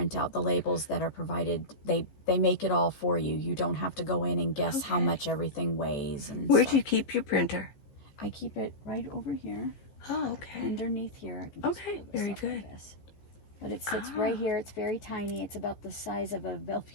out the labels that are provided. They make it all for you. You don't have to go in and guess how much everything weighs and Where stuff. do you keep your printer? I keep it right over here. Oh, okay. Underneath here. I can just pull this very up good. like this. But it sits right here. It's very tiny. It's about the size of a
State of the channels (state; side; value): late; right; 14 ms